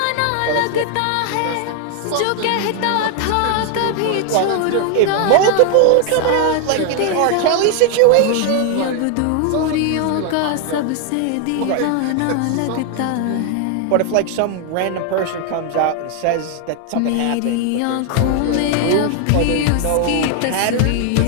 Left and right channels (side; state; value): both; different; correlation 0.00